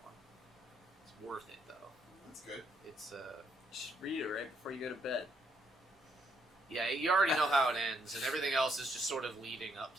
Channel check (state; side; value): normal; both; correlation 0.73